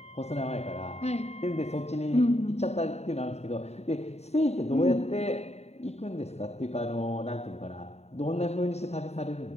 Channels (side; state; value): right; late; 0.31 ms